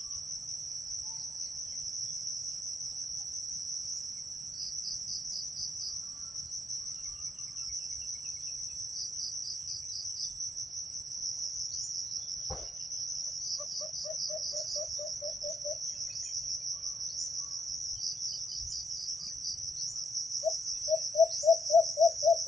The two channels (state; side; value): normal; both; correlation 0.79